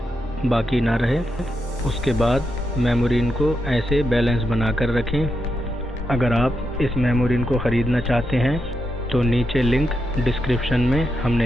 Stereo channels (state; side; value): normal; both; correlation 0.84